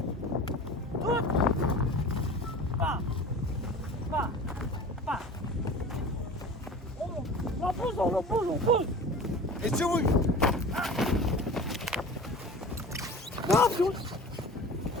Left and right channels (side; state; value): both; normal; correlation 0.38